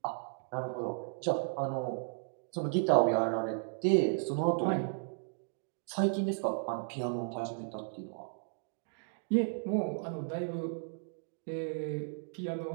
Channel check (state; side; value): silent; left; digital silence